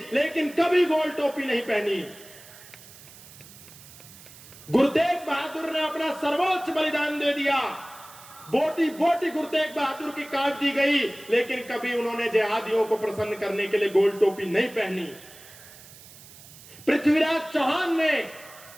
लेकिन कभी गोल टोपी नहीं पहनी। गुरु तेग बहादुर ने अपना सर्वोच्च बलिदान दे दिया, बोटी बोटी गुरु तेग बहादुर की काट दी गई, लेकिन कभी उन्होंने जिहादियों को प्रसन्न करने के लिए गोल टोपी नहीं पहनी। पृथ्वीराज चौहान ने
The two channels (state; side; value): noise; right; hiss, 20 dB below the sound